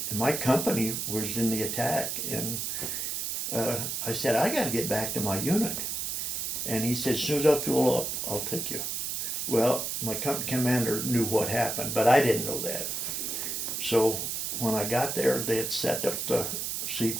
and my company was in the attack. And I said, I got to get back to my unit. And he said, as soon as I fuel up, I'll take you. Well, my company commander knew what happened, but I didn't know that. So when I got there, they had set up the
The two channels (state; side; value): noise; right; hiss, 2 dB below the sound